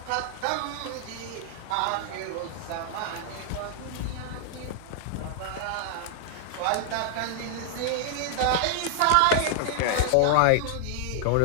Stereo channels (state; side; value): different; both; correlation -0.01